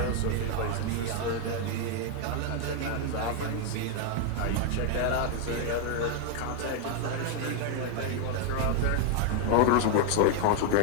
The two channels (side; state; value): both; different; correlation 0.01